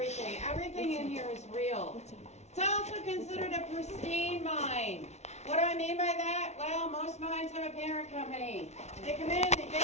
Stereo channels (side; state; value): right; late; 0.32 ms